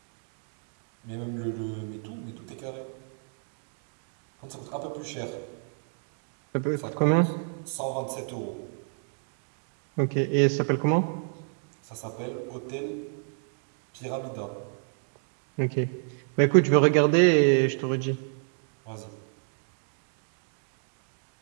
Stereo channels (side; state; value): left; silent; 58 dB below the other